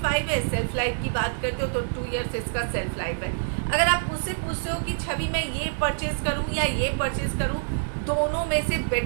है। सेल्फ लाइफ की बात करते हो तो 2 इयर्स इसका सेल्फ लाइफ है। अगर आप मुझसे पूछते हो कि छवि मैं ये परचेज करूं या ये परचेज करूं, दोनों में से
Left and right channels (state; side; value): silent; left; digital silence